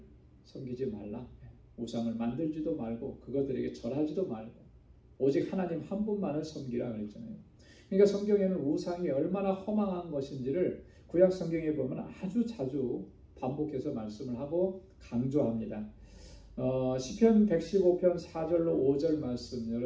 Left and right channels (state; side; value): identical; both; correlation 1.00